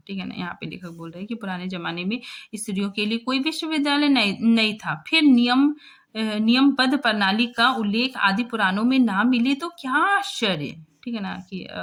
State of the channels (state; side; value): identical; both; correlation 1.00